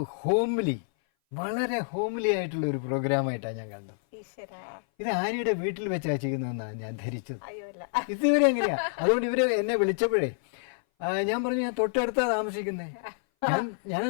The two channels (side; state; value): right; silent; 57 dB below the other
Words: ഹോംലി, വളരെ ഹോംലി ആയിട്ടുള്ള ഒരു പ്രോഗ്രാമായിട്ടാണ് ഞാൻ കണ്ടത്. ഇത് ആര്യയുടെ വീട്ടിൽ വെച്ചാണ് ചെയ്യുന്നതെന്നാണ് ഞാൻ ധരിച്ചത്. ഇതുവരെ എങ്ങനെയാ? അതുകൊണ്ട് ഇവര് എന്നെ വിളിച്ചപ്പോഴേ ഞാൻ പറഞ്ഞു, ഞാൻ തൊട്ടടുത്താ താമസിക്കുന്നേ,